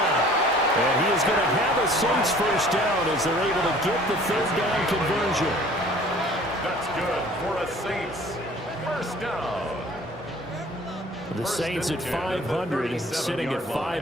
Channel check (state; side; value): normal; both; correlation 0.51